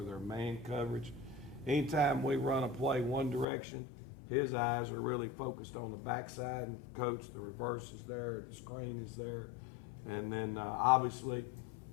they're man coverage. Anytime we run a play one direction, his eyes are really focused on the backside, and Coach, the reverse is there, the screen is there. And then obviously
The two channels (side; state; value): right; drops out; at 3.5 s